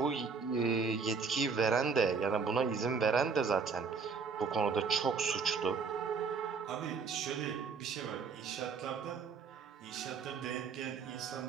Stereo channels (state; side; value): quieter; left; 5.3 dB